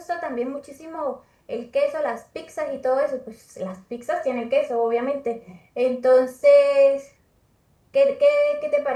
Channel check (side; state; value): both; identical; correlation 1.00